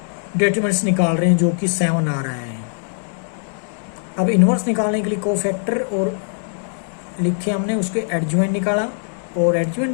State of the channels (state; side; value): silent; right; 65 dB below the other